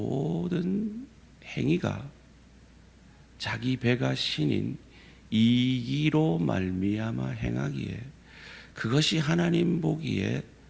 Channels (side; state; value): both; identical; correlation 1.00